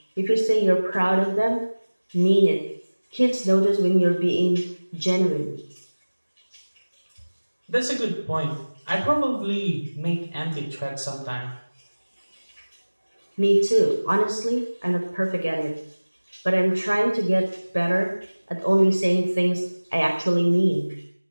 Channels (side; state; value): both; inverted; correlation -1.00